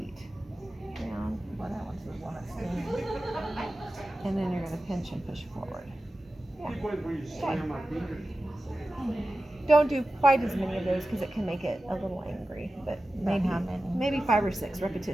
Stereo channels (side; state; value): both; normal; correlation 0.94